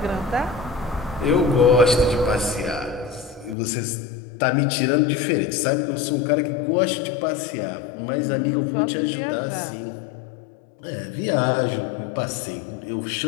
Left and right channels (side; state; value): right; drops out; at 3.6 s